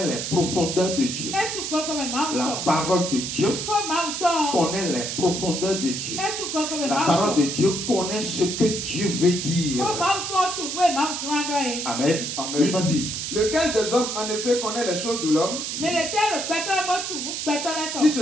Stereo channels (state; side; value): noise; right; hiss, 4 dB below the sound